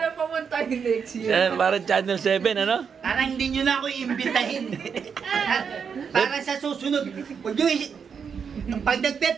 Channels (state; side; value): quieter; left; 6.5 dB